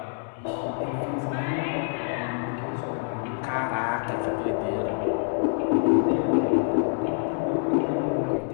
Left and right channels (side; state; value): right; silent; 61 dB below the other